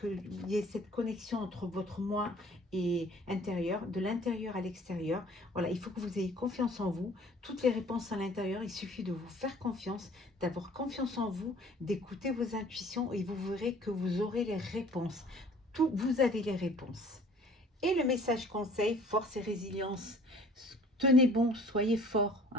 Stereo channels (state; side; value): normal; both; correlation 0.52